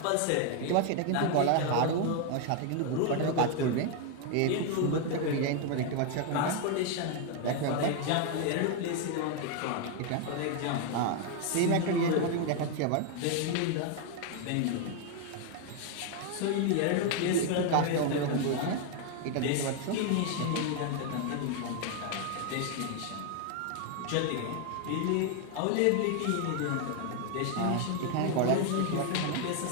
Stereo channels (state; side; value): different; both; correlation 0.00